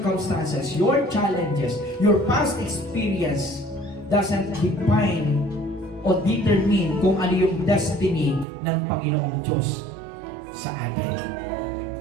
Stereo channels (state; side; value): drops out; left; at 8.5 s